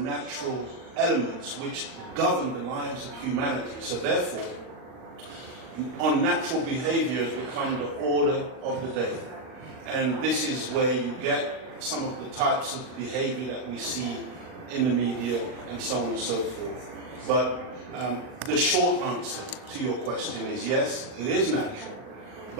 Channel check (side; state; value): left; late; 39 ms